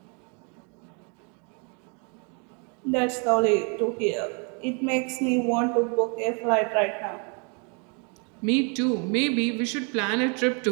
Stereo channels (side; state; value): left; quieter; 36.2 dB